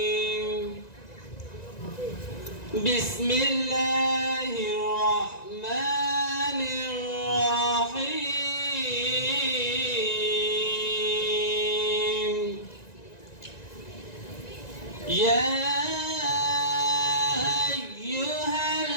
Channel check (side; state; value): right; late; 1.9 ms